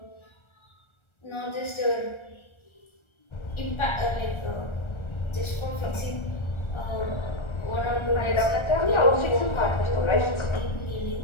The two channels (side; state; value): right; late; 1.3 ms